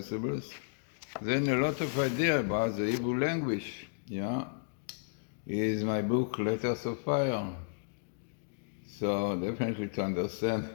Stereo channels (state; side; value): silent; right; digital silence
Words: Then a lot of ideas about the Hebrew language, is my book, Letters of Fire. So definitely to understand